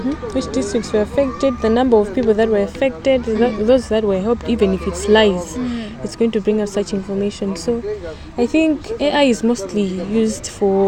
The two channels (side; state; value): both; identical; correlation 1.00